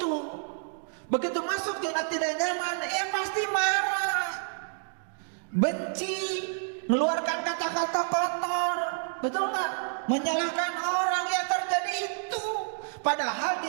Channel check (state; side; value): silent; left; digital silence